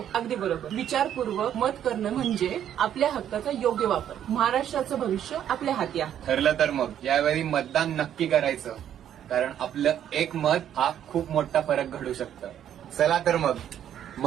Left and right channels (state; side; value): quieter; left; 10.2 dB